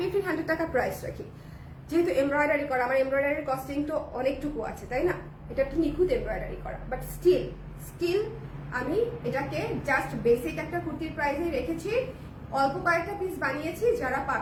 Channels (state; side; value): identical; both; correlation 1.00